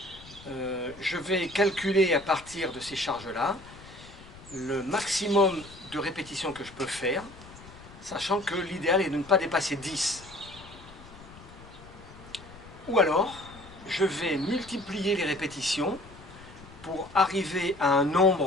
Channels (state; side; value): noise; left; rumble, 19 dB below the sound